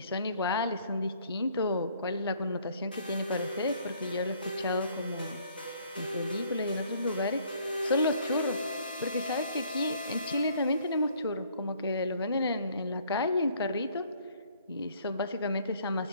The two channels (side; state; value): both; inverted; correlation -0.62